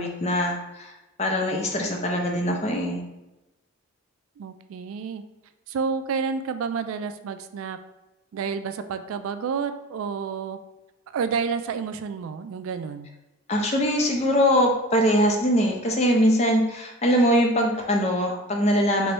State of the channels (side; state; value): both; normal; correlation 0.35